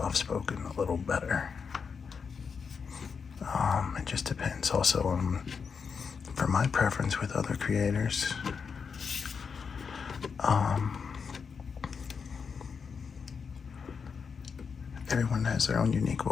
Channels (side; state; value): right; quieter; 5.9 dB